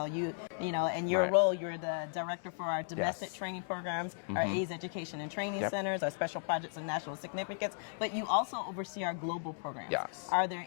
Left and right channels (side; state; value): right; silent; digital silence